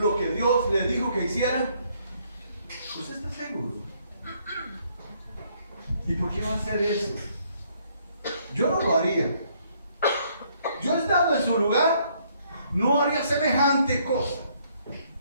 que Dios le dijo que hiciera? ¿Usted está seguro? ¿Y por qué va a hacer eso? Yo no lo haría. Yo estando en su lugar, no haría semejante cosa.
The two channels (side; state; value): both; inverted; correlation -0.68